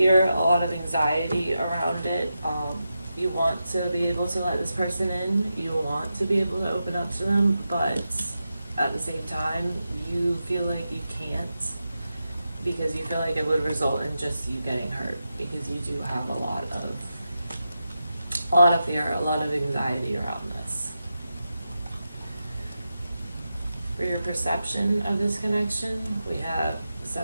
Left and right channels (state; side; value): inverted; both; correlation -0.89